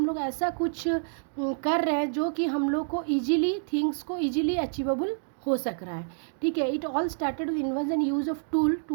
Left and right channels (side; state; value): left; silent; digital silence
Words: लोग ऐसा कुछ कर रहे हैं जो कि हम लोग को ईजिली थिंग्स को ईजिली अचीवेबल हो सक रहा है. ठीक है, it all started with invention use of tool